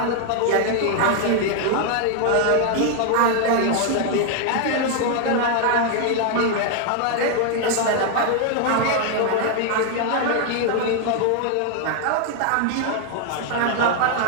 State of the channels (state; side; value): different; both; correlation 0.00